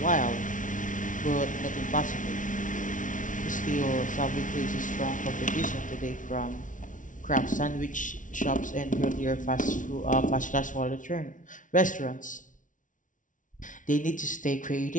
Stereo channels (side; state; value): right; late; 0.38 ms